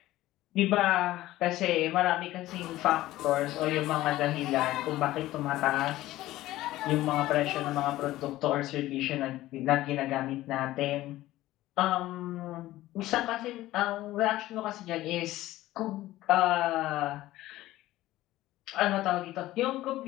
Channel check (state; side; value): quieter; right; 16.0 dB